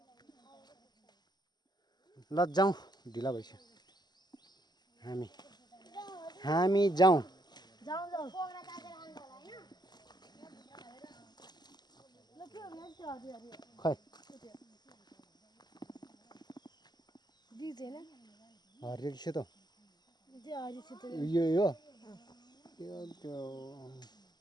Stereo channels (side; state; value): right; late; 0.20 ms